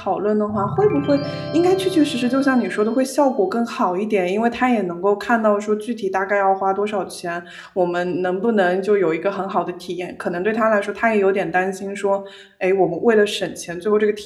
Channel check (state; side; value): identical; both; correlation 1.00